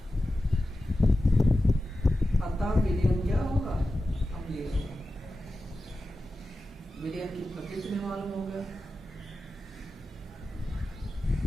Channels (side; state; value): both; normal; correlation 0.94